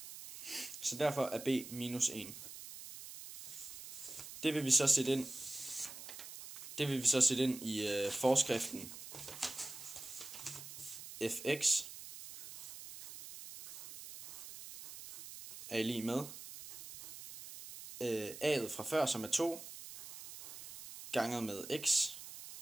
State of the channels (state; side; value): noise; right; hiss, 12 dB below the sound